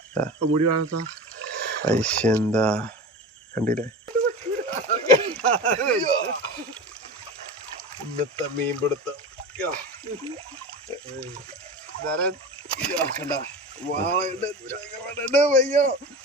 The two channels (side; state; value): both; normal; correlation 0.31